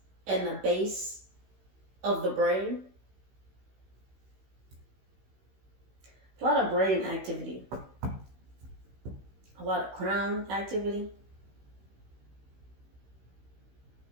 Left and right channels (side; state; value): left; late; 16 ms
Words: in the base of the brain. A lot of brain activity. A lot of crown activity.